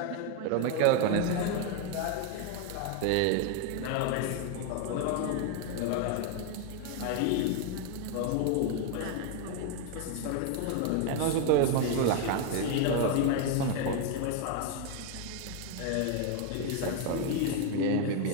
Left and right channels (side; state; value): both; different; correlation 0.01